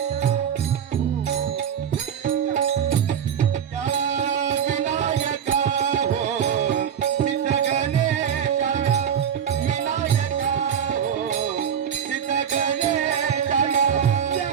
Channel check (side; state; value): left; quieter; 8.3 dB